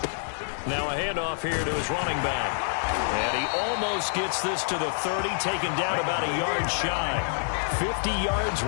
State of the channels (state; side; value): silent; right; digital silence